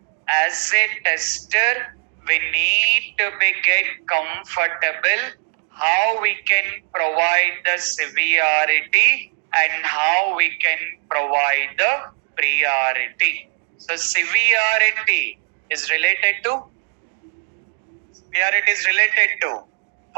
we need to be get comfortable how we can provide the severity and how we can provide the priority. So severity is related to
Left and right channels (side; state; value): left; silent; digital silence